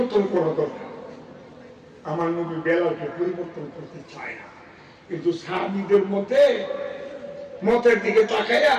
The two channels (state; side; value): identical; both; correlation 1.00